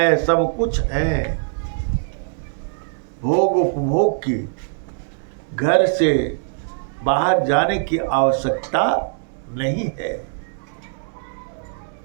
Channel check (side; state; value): left; silent; digital silence